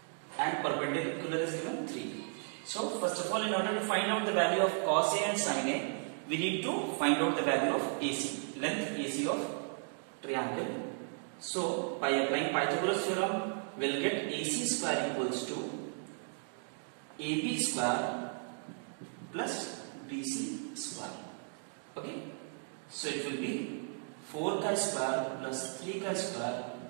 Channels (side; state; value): left; silent; 54 dB below the other